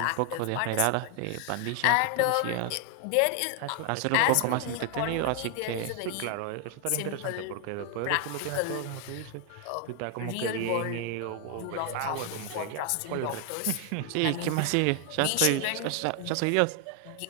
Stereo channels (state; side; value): different; both; correlation 0.00